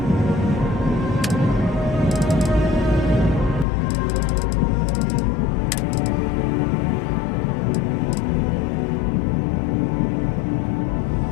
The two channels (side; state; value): right; drops out; at 3.7 s